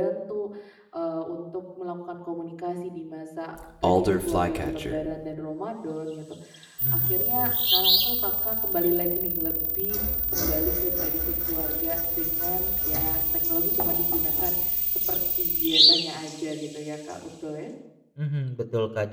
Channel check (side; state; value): both; identical; correlation 1.00